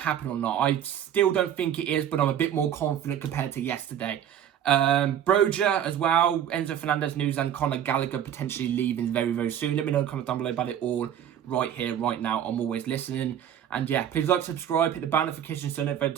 happen or not? I still don't think it is, but I'm a bit more confident compared to yesterday. Broja as well, Enzo Fernandez news, and Conor Gallagher potentially leaving very, very soon. Let me know in the comments down below about it all right here, right now. I'm always listening. And yeah, please like, subscribe, hit the bell notification so every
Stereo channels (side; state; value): left; quieter; 9.8 dB